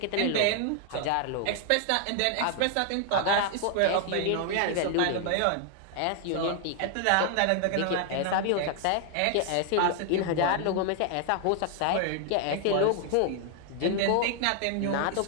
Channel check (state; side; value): different; both; correlation 0.00